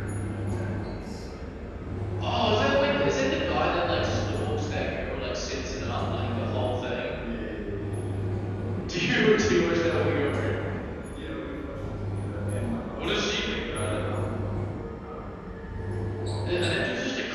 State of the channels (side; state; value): both; identical; correlation 1.00